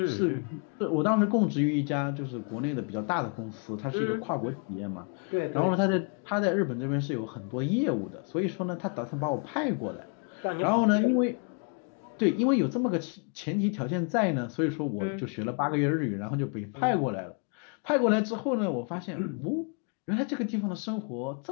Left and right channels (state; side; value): quieter; right; 38.8 dB